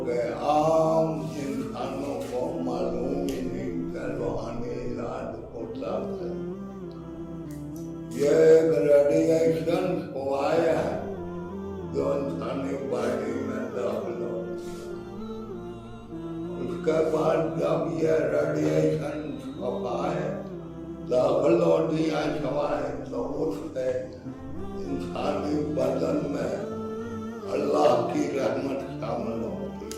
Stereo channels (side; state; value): both; identical; correlation 1.00